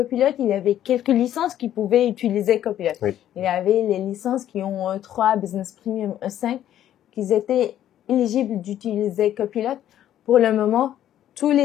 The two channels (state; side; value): quieter; right; 11.5 dB